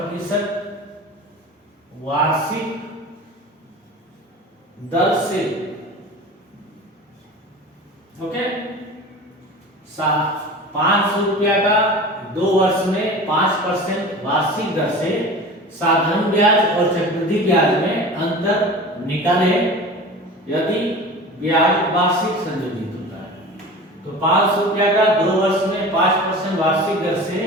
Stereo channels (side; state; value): both; normal; correlation 0.36